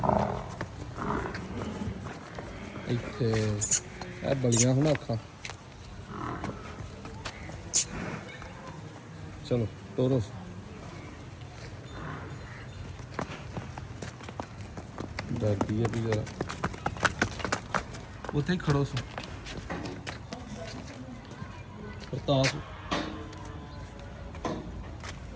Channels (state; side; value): identical; both; correlation 1.00